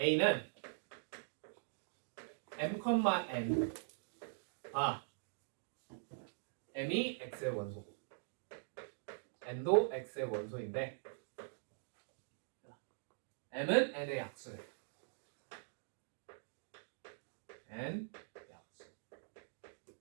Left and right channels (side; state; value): left; silent; digital silence